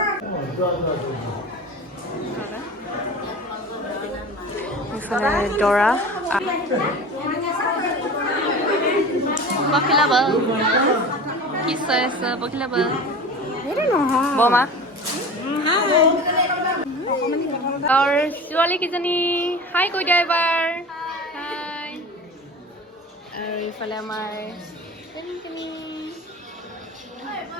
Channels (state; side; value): normal; both; correlation 0.35